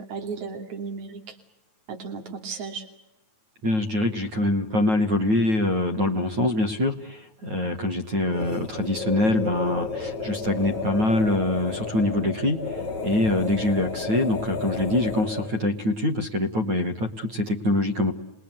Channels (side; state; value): left; late; 9.2 ms